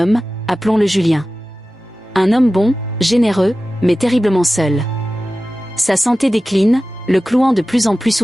appelons-le Julien. Un homme bon, généreux, mais terriblement seul. Sa santé décline, le clouant de plus en plus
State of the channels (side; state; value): both; normal; correlation 0.95